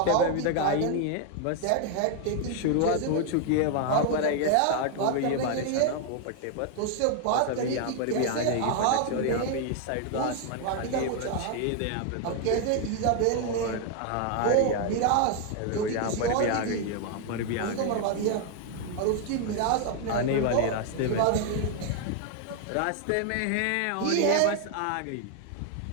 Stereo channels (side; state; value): both; different; correlation 0.00